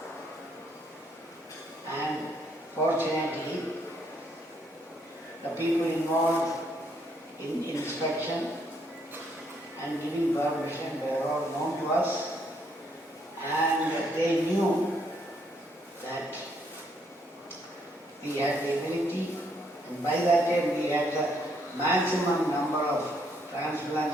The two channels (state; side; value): normal; both; correlation 0.71